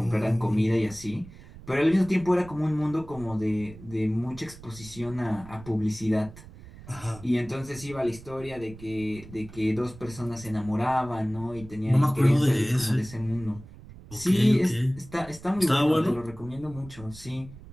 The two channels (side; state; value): right; noise; rumble, 18 dB below the sound